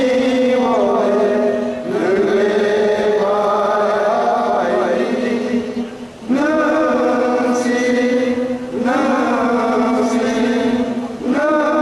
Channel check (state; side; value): identical; both; correlation 1.00